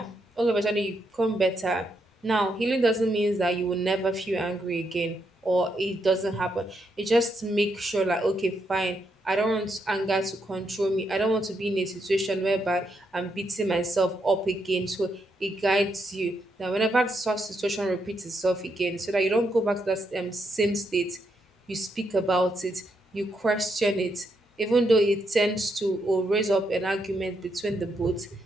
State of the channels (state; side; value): normal; both; correlation 0.79